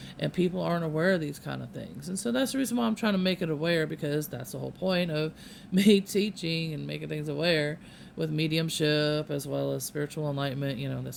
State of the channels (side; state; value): both; identical; correlation 1.00